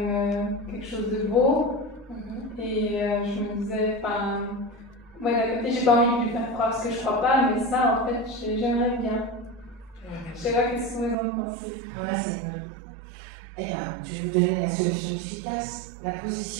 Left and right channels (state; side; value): drops out; left; at 11.2 s